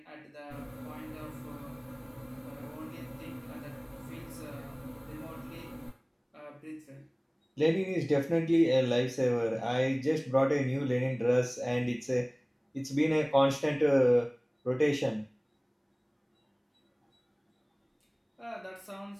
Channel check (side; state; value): both; identical; correlation 1.00